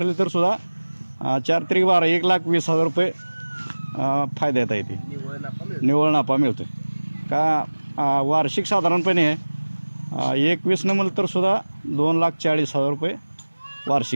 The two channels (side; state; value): both; inverted; correlation -1.00